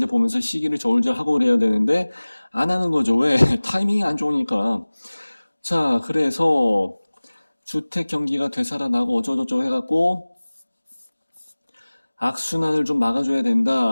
보면서 시기를 저울질하고 그래야 되는데 안 하는 거죠. 왜? 타이밍이 안 좋으니까. 자, 그래서 주택 경기가 되살아나고 어쩌고저쩌고 해갖고 악순환을 좀 막아줘야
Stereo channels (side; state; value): both; inverted; correlation -1.00